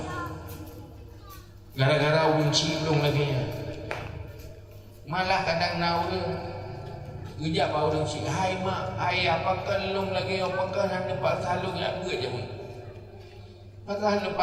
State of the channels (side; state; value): both; identical; correlation 1.00